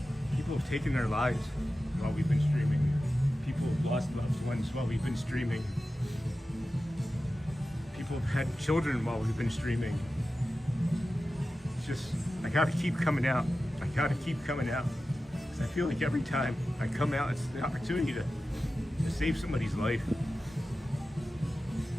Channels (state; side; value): normal; both; correlation 0.94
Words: have taken their lives while we've been streaming. People have lost loved ones while we've been streaming. People have had children while we've been streaming. It's just, I gotta keep coming out. I gotta keep coming out. Because I feel like every time I come out, it's the opportunity to save somebody's life.